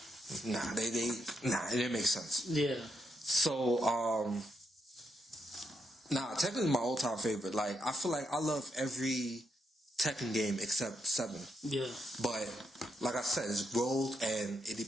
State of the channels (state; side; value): normal; both; correlation 0.80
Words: it didn't make sense. Yeah. So, Tekken is my all-time favorite. Like, I feel like I love every Tekken game except 7. Yeah. But, like I said, it's growth and it